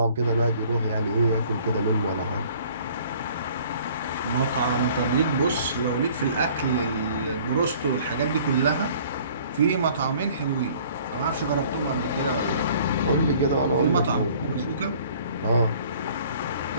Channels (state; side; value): inverted; both; correlation -0.54